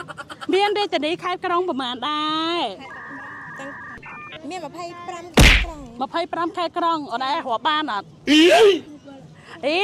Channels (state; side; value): identical; both; correlation 1.00